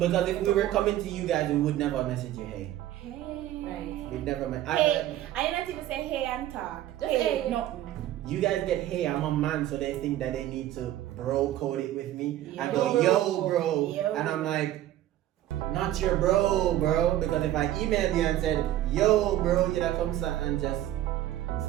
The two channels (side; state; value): left; quieter; 13.4 dB